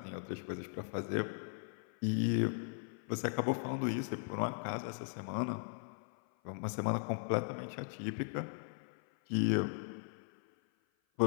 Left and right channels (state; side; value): silent; right; 52 dB below the other